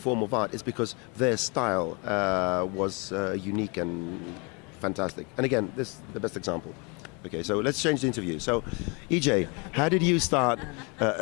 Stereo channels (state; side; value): quieter; right; 31.2 dB